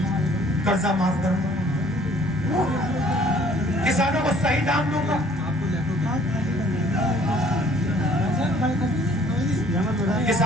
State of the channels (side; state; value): both; normal; correlation 0.58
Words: कर्जा माफ करूंगा, किसानों को सही दाम दूंगा।